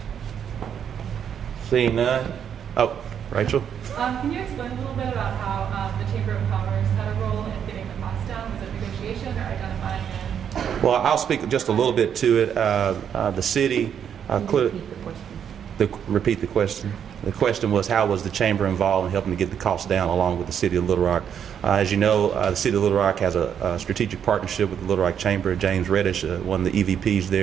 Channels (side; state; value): left; quieter; 8.4 dB